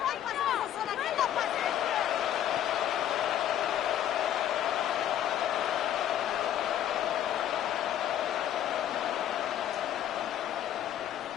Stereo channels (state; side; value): quieter; right; 11.0 dB